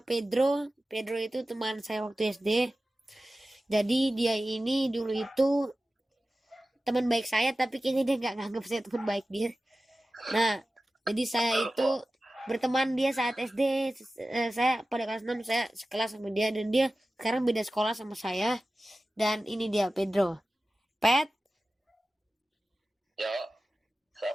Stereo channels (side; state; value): both; normal; correlation 0.95